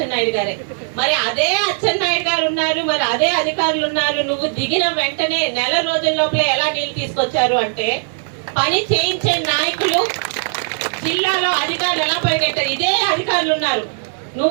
గారే. మరి అదే అచ్చెన్నాయుడు గారు ఉన్నారు, మరి అదే అధికారులు ఉన్నారు. నువ్వు దిగిన వెంటనే నెల రోజుల లోపలే ఎలా నీళ్లు తీసుకొచ్చారు అంటే, పని చేయించే నాయకులు జిల్లాలో అధికారులు ఎలా పరిగెట్టారు, ఇదే అధికారులు ఉన్నారు.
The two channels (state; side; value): silent; left; digital silence